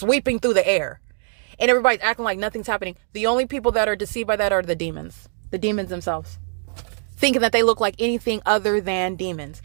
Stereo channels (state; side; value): silent; left; digital silence